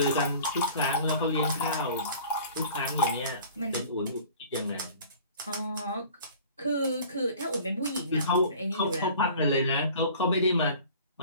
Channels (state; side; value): inverted; both; correlation -0.46